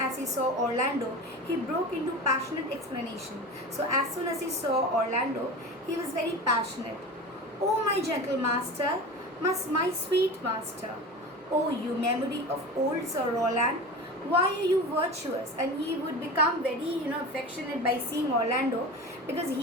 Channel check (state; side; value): normal; both; correlation 0.31